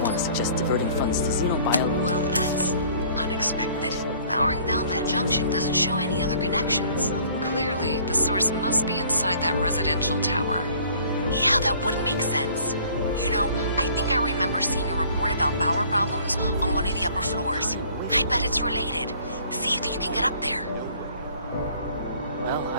to suggest diverting funds to Xenobio. Well, that's unexpected. powering down that junction doesn't show any other connections. Clearly, the source must be inside that residential tower. Yeah, that would make sense. You know, I think I remember seeing a report about power problems on one of the upper floors. I bet it's related. See if you can get up there. Well,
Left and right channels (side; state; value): both; inverted; correlation -0.55